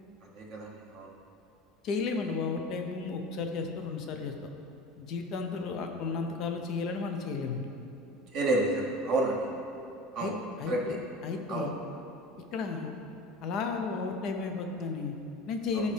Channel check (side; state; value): both; normal; correlation 0.35